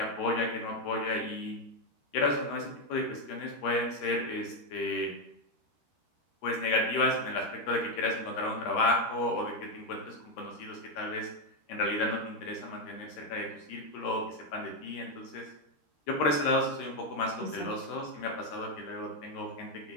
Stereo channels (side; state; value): right; late; 13 ms